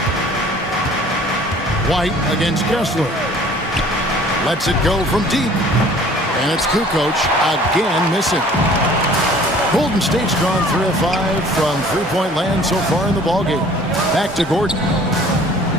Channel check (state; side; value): normal; both; correlation 0.51